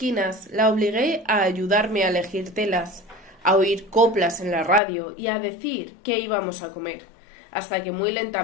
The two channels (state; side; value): drops out; right; at 4.8 s